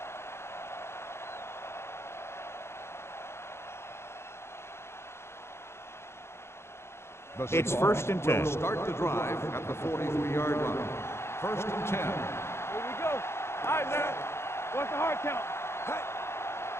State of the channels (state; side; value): late; right; 0.12 ms